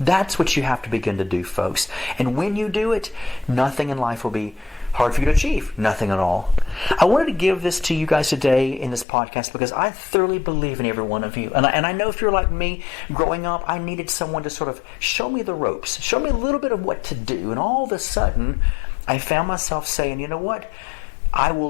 what you have to begin to do, folks. And when you do it, nothing in life will be hard for you to achieve. Nothing at all. I wanted to give this to you guys today in this podcast because I thoroughly believe in every one of you. And I know if you're like me, growing up, I needed someone to sort of show me the ropes, show me a little bit of what to do. And all of a sudden, I found myself saying, you know what? I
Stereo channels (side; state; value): right; drops out; at 9.1 s